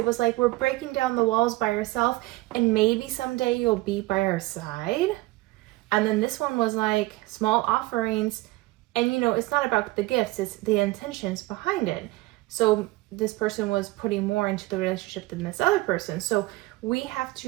was like we're breaking down the walls by ourselves, and maybe someday you'll be by our side. And then this one was like small offerings. And you know, it's not about the gifts, it's the intentions behind it. So this person was putting more into the relationship than this other person. So we have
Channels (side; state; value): left; quieter; 19.8 dB